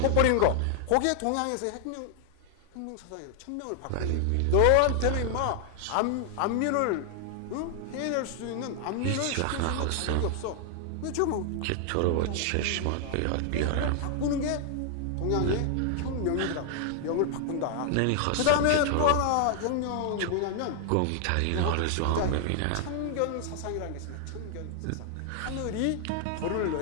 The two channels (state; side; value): different; both; correlation 0.00